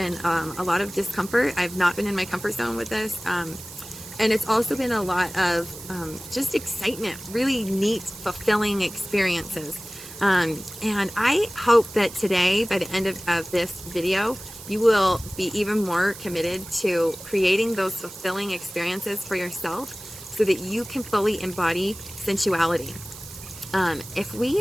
a lot of discomfort. I've not been in my comfort zone with this. And it's also been a lot of just excitement, really neat, fulfilling experiences. And I hope that today, by the end of this video, you will be even more committed to creating those fulfilling experiences for yourself so that you can fully embody sensuality. If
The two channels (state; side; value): noise; right; hiss, 14 dB below the sound